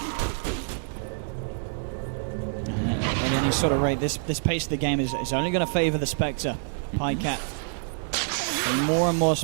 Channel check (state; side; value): silent; left; digital silence